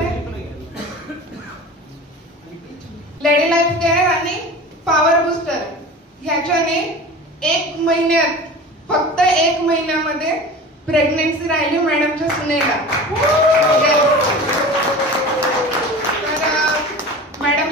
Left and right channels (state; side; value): normal; both; correlation 0.36